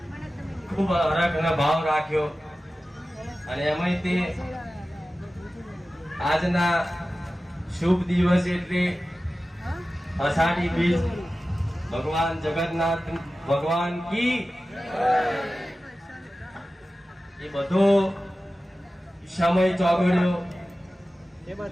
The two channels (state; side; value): normal; both; correlation 0.95